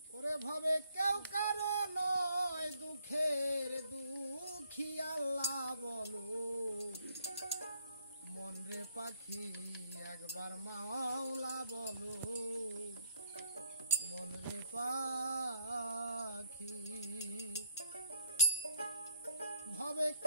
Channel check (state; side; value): inverted; both; correlation -0.65